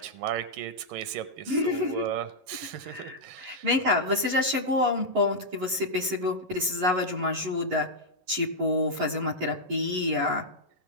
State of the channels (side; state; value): left; late; 11 ms